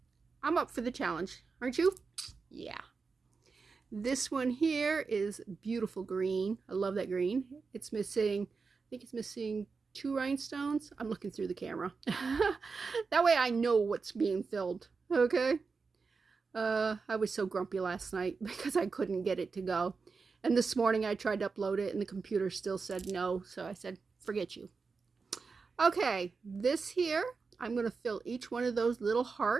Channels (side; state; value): left; quieter; 4.7 dB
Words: I'm up for the challenge, aren't you? Yeah. This one here is beautiful green. I love that green. It's missing, I think it's missing 2 rhinestones. I'm looking through the camera. That way I know what's being filled. Okay. I was so grumpy last night because I couldn't get it to go. And this morning I tried to upload it and the computer still said no. So I said, forget you. Okay, this here, I'm going to fill each one of those little